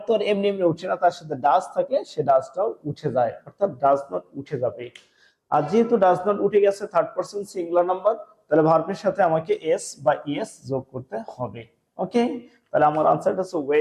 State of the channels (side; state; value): both; identical; correlation 1.00